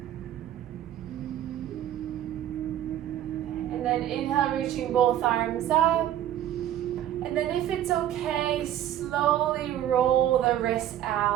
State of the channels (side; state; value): left; quieter; 11.7 dB